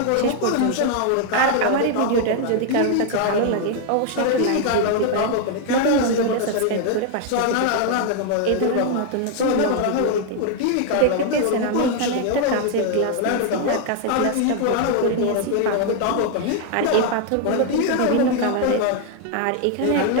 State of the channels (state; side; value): different; both; correlation 0.00